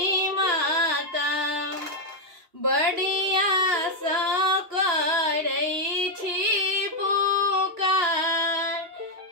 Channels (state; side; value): late; left; 2.8 ms